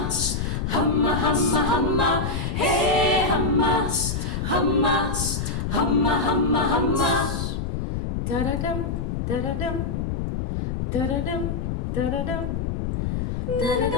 ஹம்மா ஹம்மா ஹம்மா ஹே ஹம்மா ஹம்மா ஹம்மா ஹம்மா ஹம்மா தரடம் தரடம் தரடம் தரடம்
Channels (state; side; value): noise; left; rumble, 1 dB below the sound